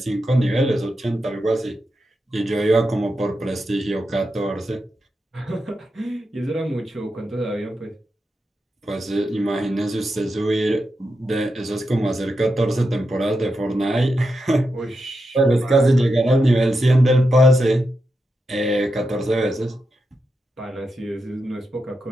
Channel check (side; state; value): both; normal; correlation 0.87